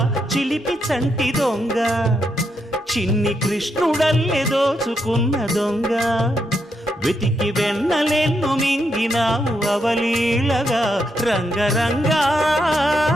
చిలిపి చంటి దొంగ, చిన్ని కృష్ణుడల్లె దోచుకున్న దొంగ, వెతికి వెన్నలెన్ను మింగినావు అవలీలగా. రంగరంగ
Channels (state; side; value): normal; both; correlation 0.80